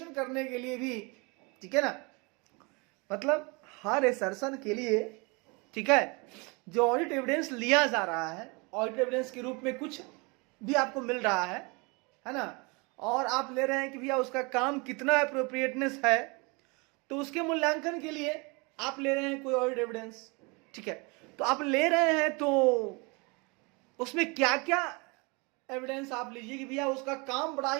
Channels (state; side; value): quieter; left; 29.0 dB